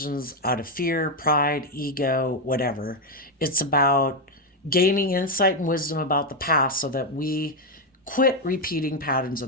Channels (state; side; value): normal; both; correlation 0.04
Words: out of fear, pride, ego, whatever. It's about gaining insight and wisdom about the past so that we quit repeating patterns